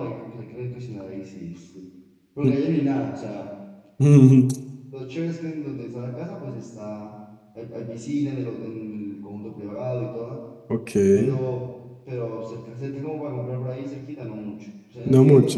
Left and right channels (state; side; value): identical; both; correlation 1.00